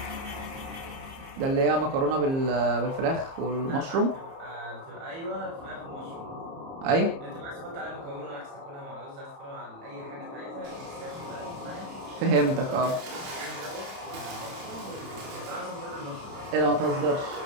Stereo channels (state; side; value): late; left; 30 ms